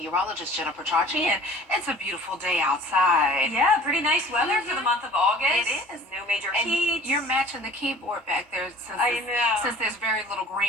Jennifer Petracci, and it's a beautiful day outside. Yeah, pretty nice weather for the month of August. It is. No major And heat. you're matching the keyboard back there since there's very little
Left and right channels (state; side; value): normal; both; correlation 0.47